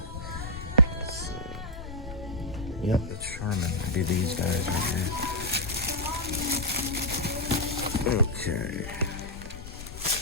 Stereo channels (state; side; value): noise; left; rumble, 11 dB below the sound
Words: Yep, that's Charmin. It'd be these guys right here. Okay.